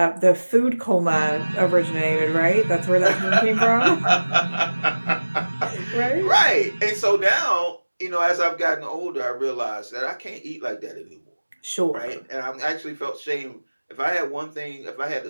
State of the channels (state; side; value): inverted; both; correlation -1.00